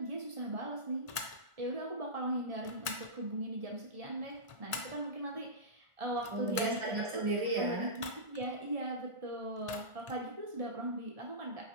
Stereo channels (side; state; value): left; late; 1.4 ms